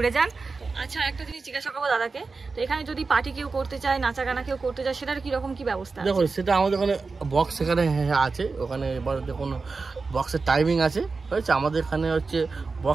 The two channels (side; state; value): left; quieter; 4.3 dB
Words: যান। আচ্ছা, একটা জিনিস জিজ্ঞাসা করবো দাদাকে, তো এখানে যদি পার্টি কেউ করতে চায়, নাচা গানা কেউ করতে চায়, সেটার কিরকম কি ব্যবস্থা? দেখুন সেটা আমাদের ওখানে বক্স এখানে আছে, ওখানে এবার দেখুন বক্সের টাইমিং আছে, হয়েছে আমাদের এখানে হচ্ছে